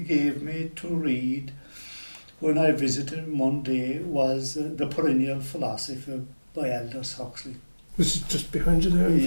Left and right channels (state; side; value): inverted; both; correlation -1.00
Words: me to read when I visited him one day was The Perennial Philosophy by Aldous Huxley. This is just behind you there. in